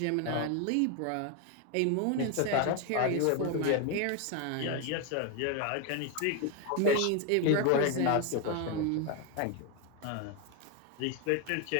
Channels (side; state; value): both; different; correlation 0.01